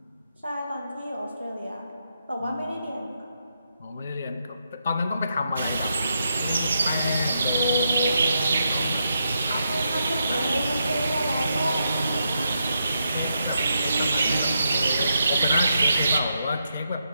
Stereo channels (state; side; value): inverted; both; correlation -0.82